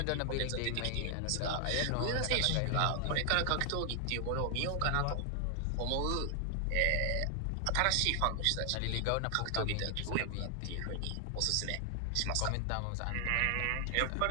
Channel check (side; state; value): both; different; correlation 0.00